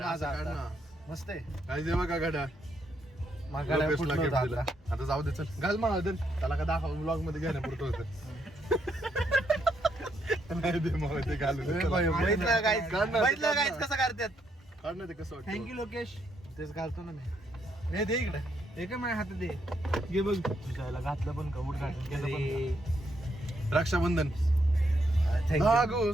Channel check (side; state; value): both; normal; correlation 0.76